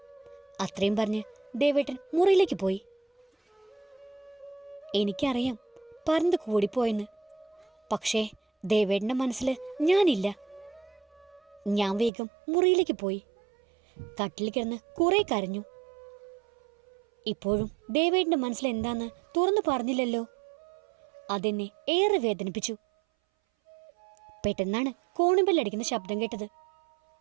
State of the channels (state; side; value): drops out; left; at 12.1 s